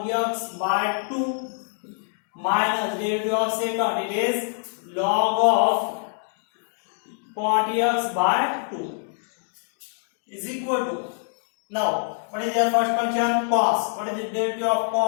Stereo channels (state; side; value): silent; right; digital silence